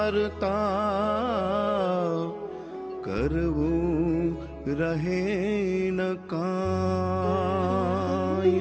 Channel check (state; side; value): identical; both; correlation 1.00